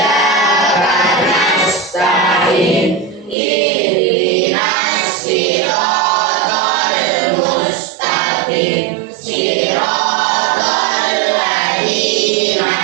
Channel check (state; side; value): drops out; left; at 3.4 s